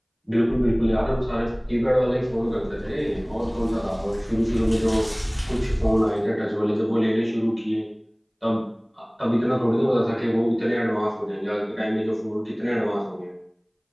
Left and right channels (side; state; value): both; identical; correlation 1.00